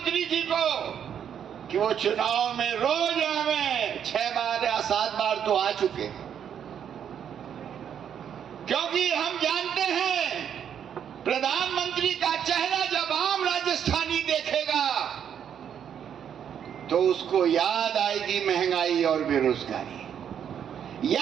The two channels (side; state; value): left; quieter; 8.7 dB